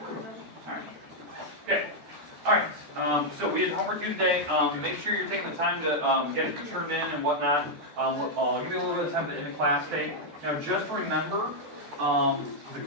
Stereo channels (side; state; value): left; late; 14 ms